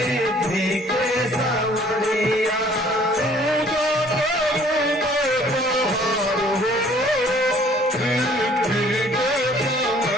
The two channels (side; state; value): both; normal; correlation 0.57